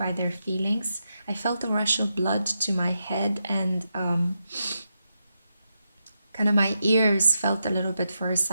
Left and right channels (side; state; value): both; inverted; correlation -0.85